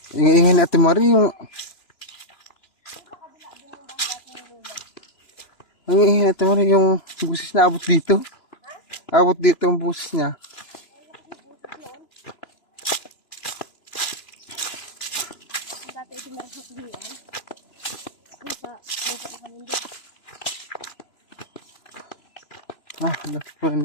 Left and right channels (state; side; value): late; right; 2.9 ms